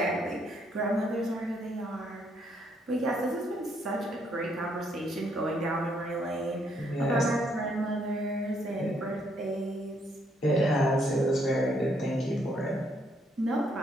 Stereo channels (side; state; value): both; normal; correlation 0.71